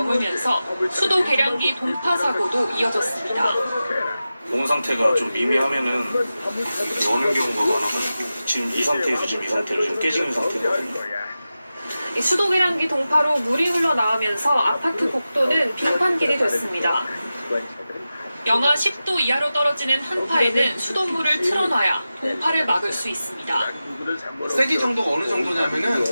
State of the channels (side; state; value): both; inverted; correlation -0.94